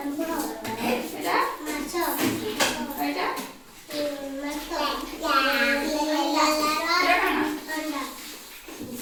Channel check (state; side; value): identical; both; correlation 1.00